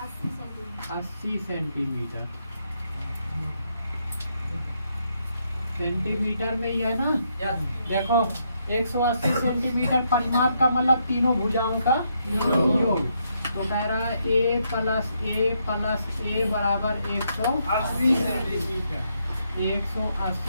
सेंटीमीटर। सेंटीमीटर में ही है ना? देखो 180 सेंटीमीटर परिमाप का मतलब तीनों भुजाओं का योग। तो कह रहा है a प्लस a बराबर 180 सेंटीमीटर।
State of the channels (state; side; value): inverted; both; correlation -0.77